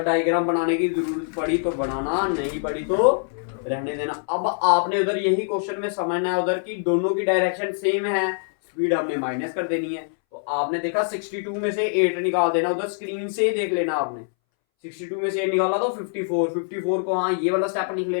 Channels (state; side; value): silent; right; 62 dB below the other